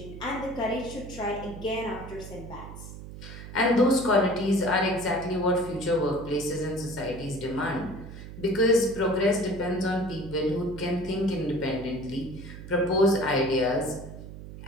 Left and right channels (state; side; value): noise; right; hum, 12 dB below the sound